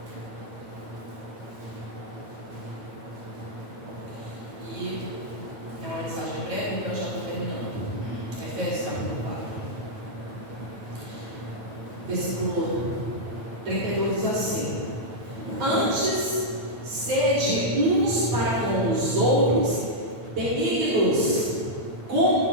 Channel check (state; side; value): late; left; 9.0 ms